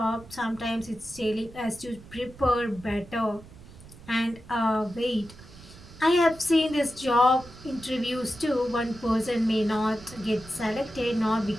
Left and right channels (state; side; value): noise; right; rumble, 19 dB below the sound